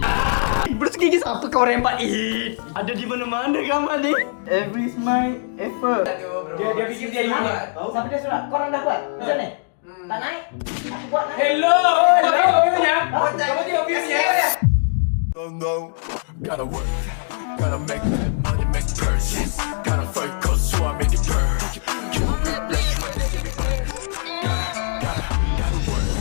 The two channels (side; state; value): right; silent; digital silence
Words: Bersekigi siapa kau rembat ini? Ada di mana-mana gambar ni. Every is my effort. Dia fikir dia ini. Siapa dia surat? Kau orang dah buat? Macam ni? Tak naik? Aku buat naik. Hello. Kamu view-nya? Kamu tengok view-nya? Gotta work, gotta make that money, make purchase. Gotta focus, so I make it burn. You gotta work.